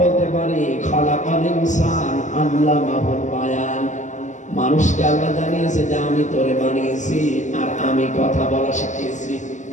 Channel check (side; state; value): right; late; 0.35 ms